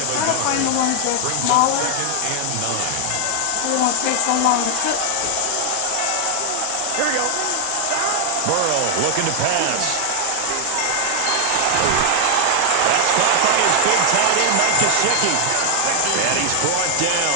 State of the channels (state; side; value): different; both; correlation 0.00